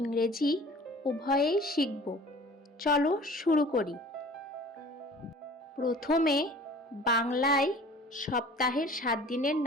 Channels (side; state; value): both; normal; correlation 0.46